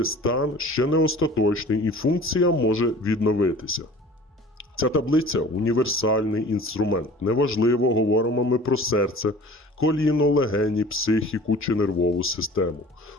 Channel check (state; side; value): normal; both; correlation 0.45